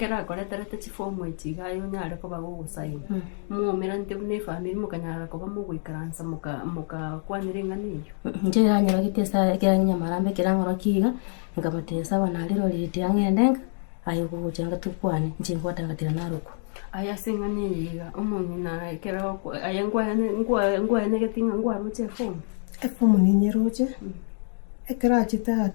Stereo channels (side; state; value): right; silent; 60 dB below the other